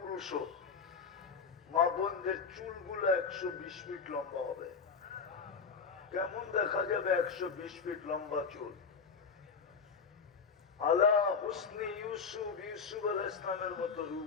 মা বোনদের চুলগুলো 120 ফিট লম্বা হবে। কেমন দেখা যাবে 120 ফিট লম্বা চুল? আলা হুসনি ইউসুফ, ইউসুফ আলাইহিস সালামের মতো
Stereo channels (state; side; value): quieter; right; 5.6 dB